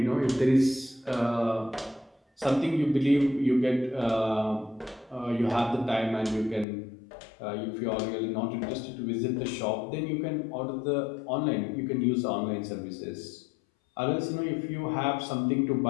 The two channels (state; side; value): drops out; right; at 6.7 s